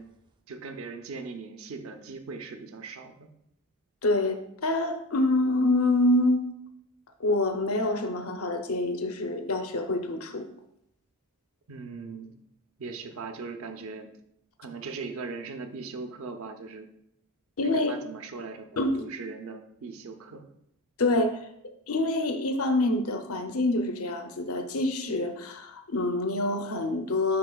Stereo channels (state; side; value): normal; both; correlation 0.24